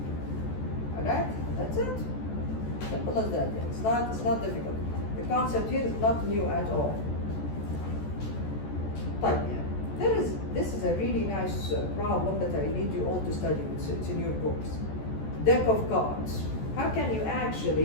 Alright, that's it. Simple as that, yeah. It's not difficult. The concept here is not new at all. But yeah, this is a really nice problem that I need you all to study. It's in your books. Deck of cards. How can you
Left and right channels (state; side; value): late; right; 14 ms